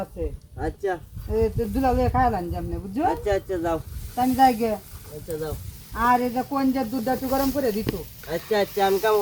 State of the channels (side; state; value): both; identical; correlation 1.00